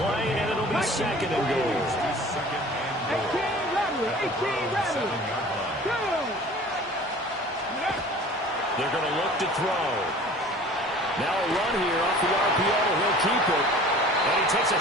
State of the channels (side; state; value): both; normal; correlation 0.45